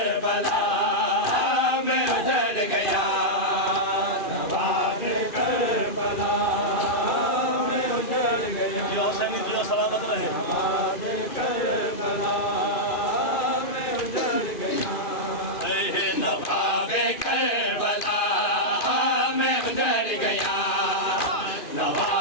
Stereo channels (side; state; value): right; late; 2.4 ms